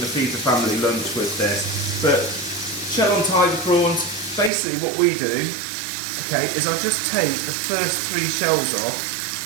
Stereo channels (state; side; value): drops out; left; at 4.5 s